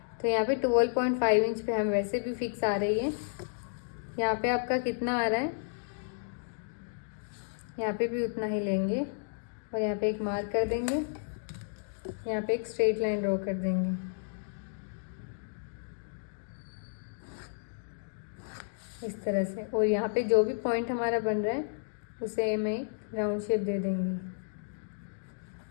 तो यहाँ पे 12.5 इंच पे हम वैसे भी फिक्स आ रही है। यहाँ पे आपका कितना आ रहा है, यहाँ पे भी उतना ही लेंगे और यहाँ पे एक मार्क कर देंगे। यहाँ पे एक स्ट्रेट लाइन ड्रॉ कर देंगे इस तरह से। और यहाँ पे जो भी पॉइंट हमारा बन रहा है उसे हमें राउंड शेप दे देंगे।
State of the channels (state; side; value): silent; right; digital silence